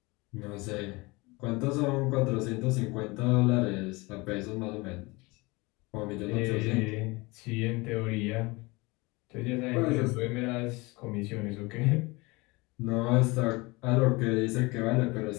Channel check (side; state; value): right; quieter; 24.4 dB